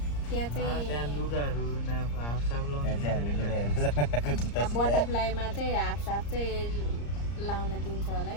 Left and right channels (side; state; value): right; late; 34 ms